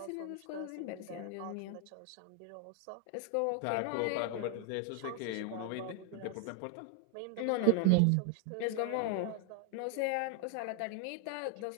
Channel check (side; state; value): both; different; correlation 0.00